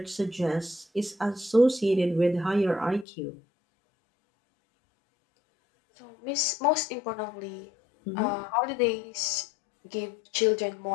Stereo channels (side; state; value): right; drops out; at 3.1 s